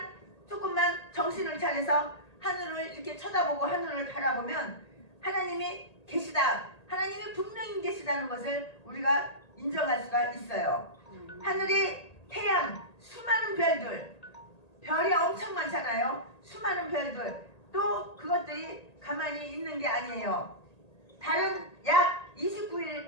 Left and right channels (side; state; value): right; late; 1.8 ms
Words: 조금만 정신을 차려서 하늘을 이렇게 쳐다보고 하늘을 바라보면 하나님이 계시다. 하나님이 분명히 계시다는 것을 우리가 인정할 수가 있어요. 하늘에 태양, 수많은 별이 엄청 많잖아요. 수많은 별들. 또 그것들이 가만히 있는 게 아니에요. 달은 약 29일,